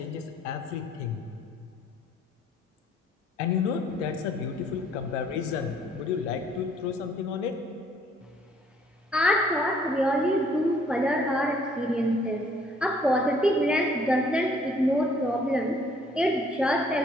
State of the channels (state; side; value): normal; both; correlation 0.62